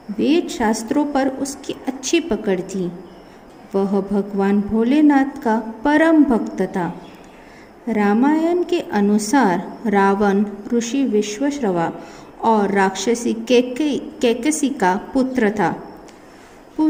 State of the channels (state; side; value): identical; both; correlation 1.00